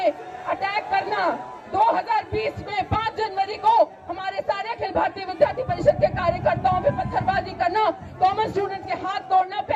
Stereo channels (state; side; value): identical; both; correlation 1.00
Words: अटैक करना, 2020 में 5 जनवरी को हमारे सारे अखिल भारतीय विद्यार्थी परिषद के कार्यकर्ताओं पे पत्थरबाजी करना, कॉमन स्टूडेंट के हाथ तोड़ना,